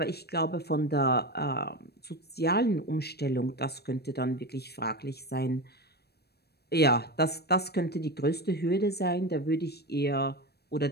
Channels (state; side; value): late; right; 0.47 ms